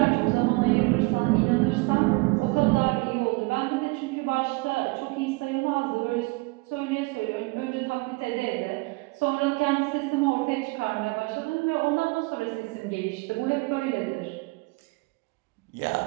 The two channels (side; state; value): left; quieter; 26.4 dB